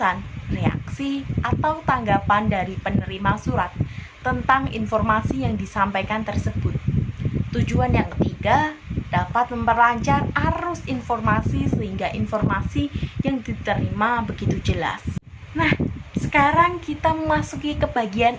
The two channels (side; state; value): both; identical; correlation 1.00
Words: reaksi, atau tanggapan dari penerima surat tentang informasi yang disampaikan tersebut. Tujuan yang ketiga, dapat memperlancar arus informasi sehingga informasi yang diterima begitu jelas. Nah, sekarang kita memasuki ke bagian